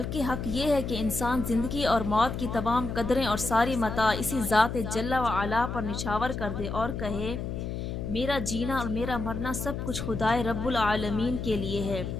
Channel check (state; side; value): noise; left; hum, 4 dB below the sound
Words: حق یہ ہے کہ انسان زندگی اور موت کی تمام قدریں اور ساری متاع اسی ذات جل و علا پر نچھاور کر دے اور کہے میرا جینا اور میرا مرنا سب کچھ خدائے رب العالمین کے لیے ہے۔